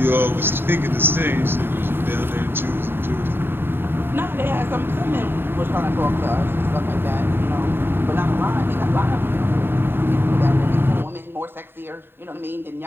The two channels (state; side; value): late; left; 0.10 ms